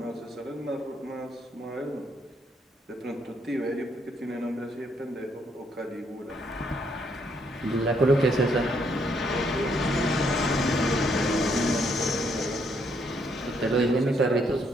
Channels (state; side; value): normal; both; correlation 0.72